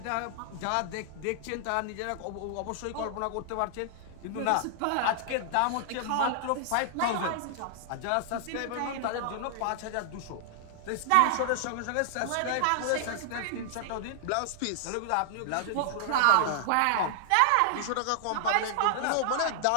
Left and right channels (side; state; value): both; different; correlation -0.01